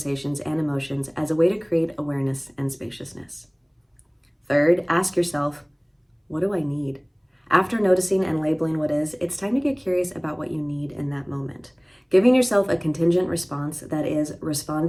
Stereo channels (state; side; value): identical; both; correlation 1.00